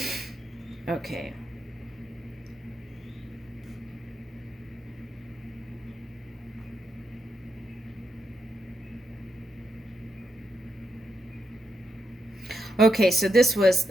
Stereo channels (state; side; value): normal; both; correlation 0.83